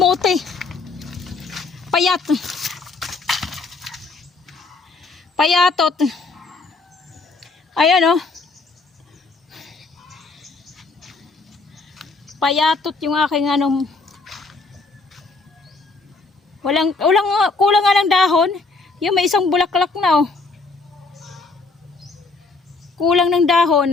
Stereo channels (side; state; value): right; quieter; 3.9 dB